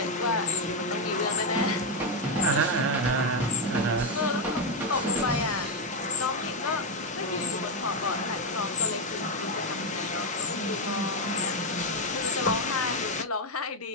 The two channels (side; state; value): both; normal; correlation 0.04